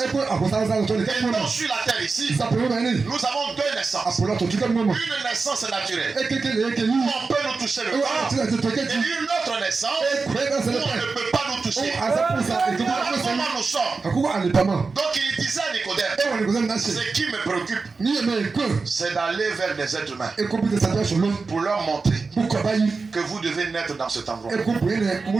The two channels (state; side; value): quieter; left; 4.3 dB